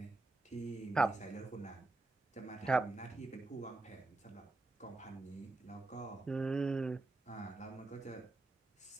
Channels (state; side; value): quieter; left; 3.1 dB